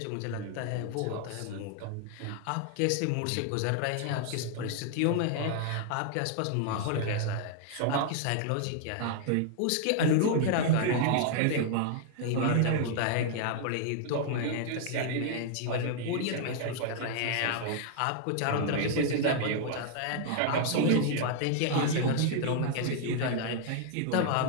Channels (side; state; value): both; different; correlation 0.00